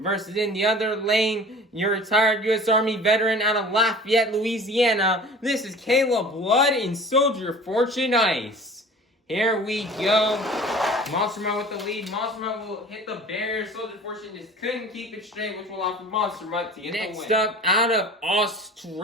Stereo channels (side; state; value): both; normal; correlation 0.43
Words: in the other lane, your retired U.S. Army veteran out of Lafayette, Louisiana. This is Caleb Blood in Soldier Fortune Ice. Here we go. Monster Mutt with the lead. Monster Mutt will hit the barrier. Soldier Fortune just couldn't keep it straight, which will allow for Monster Mutt to get the win. Next up, out of